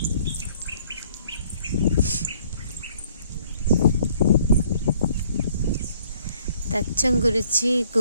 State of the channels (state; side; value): inverted; both; correlation -0.61